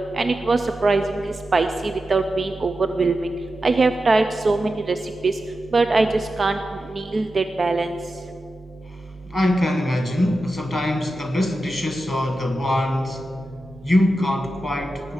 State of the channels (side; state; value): both; normal; correlation 0.91